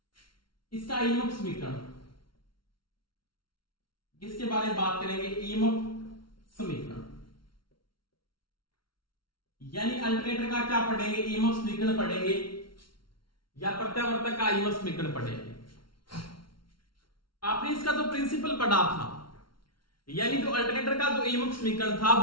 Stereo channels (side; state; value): right; late; 0.73 ms